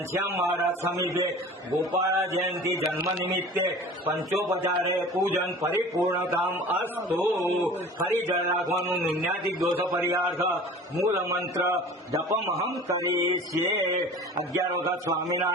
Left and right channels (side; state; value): both; normal; correlation 0.41